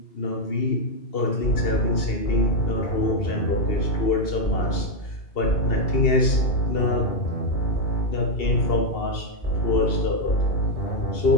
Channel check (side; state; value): right; late; 2.7 ms